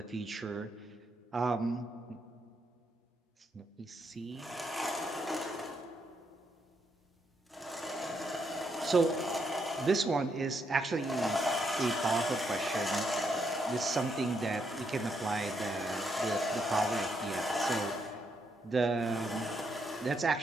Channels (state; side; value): normal; both; correlation 0.78